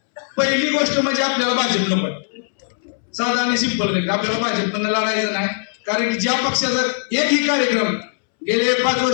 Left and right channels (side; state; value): right; silent; 66 dB below the other